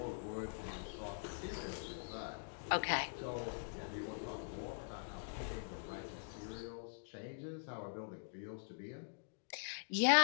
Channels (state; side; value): silent; right; digital silence